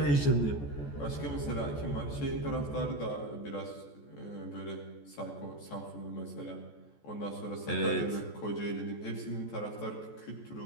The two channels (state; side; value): late; right; 14 ms